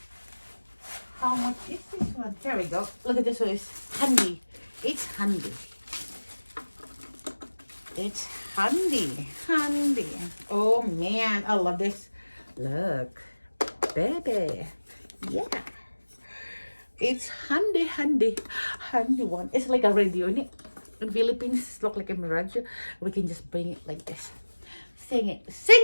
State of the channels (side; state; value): both; inverted; correlation -1.00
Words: how much is this one? Here we go. Look at this one. It's handy. It's handy. Oh man, I love this. Look, baby. Yeah. It's handy one. It's like a radio in it. In Philippines, look like a radio. We can just bring it like this. Sing